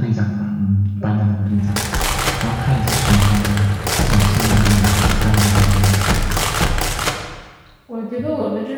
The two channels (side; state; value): both; identical; correlation 1.00